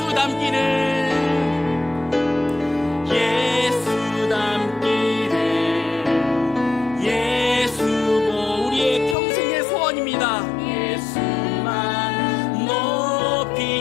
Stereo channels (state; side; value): drops out; right; at 9.2 s